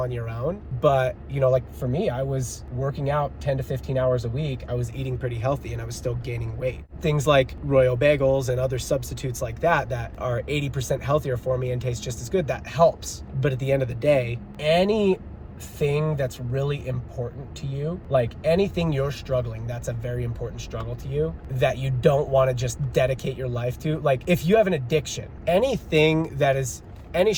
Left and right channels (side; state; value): both; identical; correlation 1.00